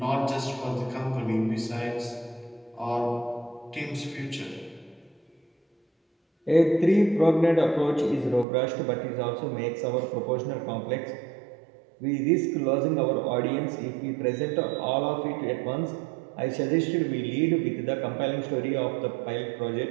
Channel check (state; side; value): drops out; left; at 8.5 s